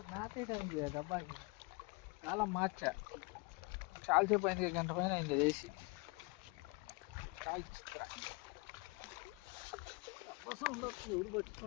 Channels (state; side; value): quieter; right; 28.4 dB